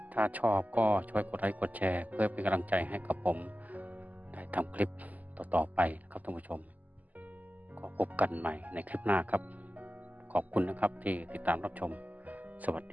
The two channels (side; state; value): left; late; 0.079 ms